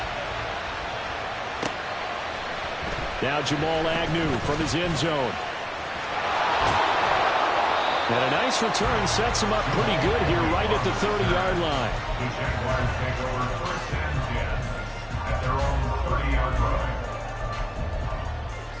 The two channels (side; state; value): both; identical; correlation 1.00